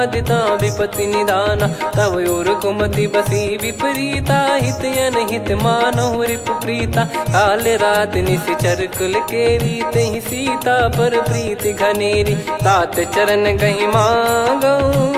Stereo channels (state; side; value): identical; both; correlation 1.00